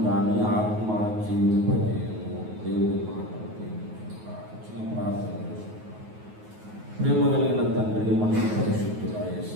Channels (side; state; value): left; late; 9.4 ms